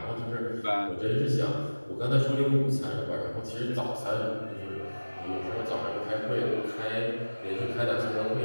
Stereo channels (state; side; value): inverted; both; correlation -1.00